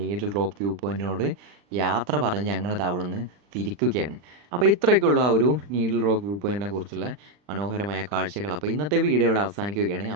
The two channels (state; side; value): late; left; 40 ms